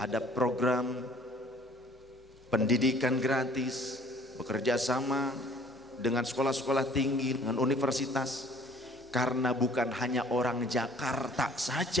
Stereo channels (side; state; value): both; normal; correlation 0.54